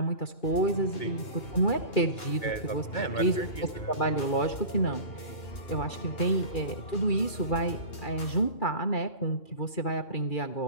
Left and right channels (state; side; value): late; right; 2.4 ms